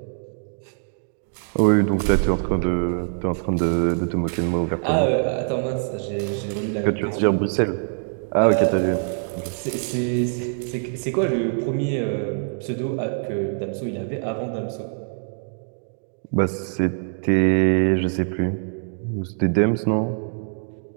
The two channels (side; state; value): left; silent; digital silence